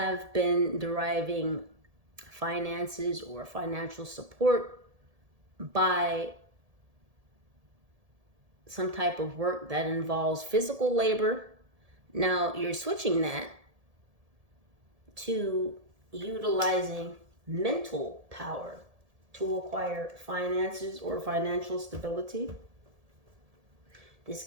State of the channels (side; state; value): left; late; 1.7 ms